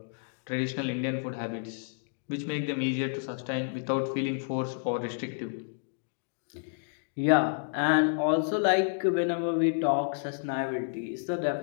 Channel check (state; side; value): silent; right; digital silence